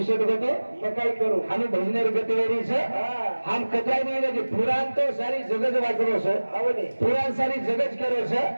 होतो मग काय करू आम्ही भजनेर गतिवेरीच हम कथाय नाही की पुराण तो सारी जगत वाचलो सर पुराण सारी जगत करो सर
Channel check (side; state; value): both; inverted; correlation -1.00